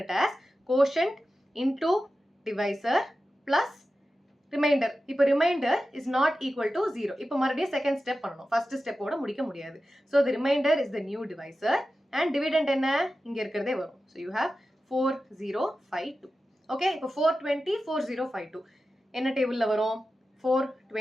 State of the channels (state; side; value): normal; both; correlation 0.93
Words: it as quotient into divisor plus remainder. இப்போ remainder is not equal to 0. இப்போ மறுபடியும் second step பண்ணணும். first step ஓட முடிக்க முடியாது. So the remainder is the new divisor and dividend என்ன இங்க இருக்கிறதே வரும். So you have 4052. Okay, இப்போ 420 4052. என்ன டேபிள்ல வரும்?